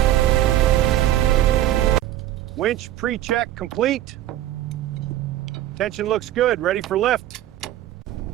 Winch pre-check complete. Tension looks good, ready for lift.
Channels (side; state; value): left; quieter; 13.3 dB